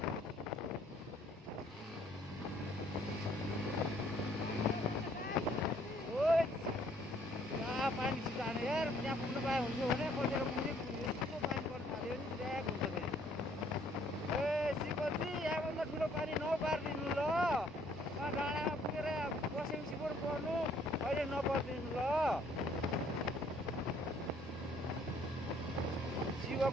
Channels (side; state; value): both; normal; correlation 0.62